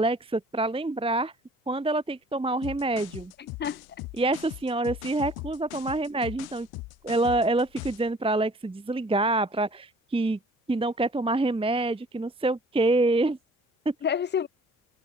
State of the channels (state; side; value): normal; both; correlation 0.53